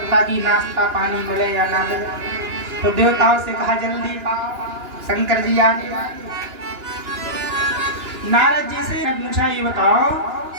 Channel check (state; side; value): late; left; 2.9 ms